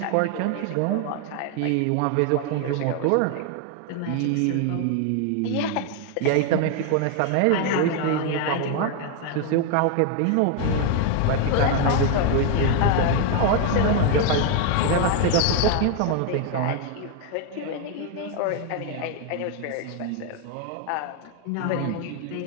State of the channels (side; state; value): both; different; correlation 0.01